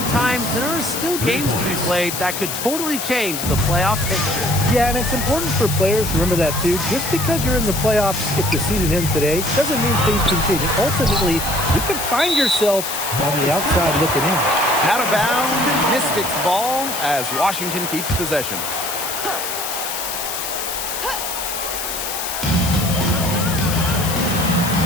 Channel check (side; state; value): left; noise; hiss, 4 dB below the sound